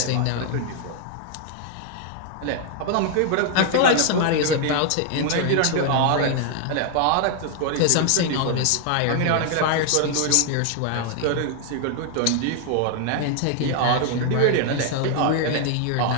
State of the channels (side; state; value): both; different; correlation 0.00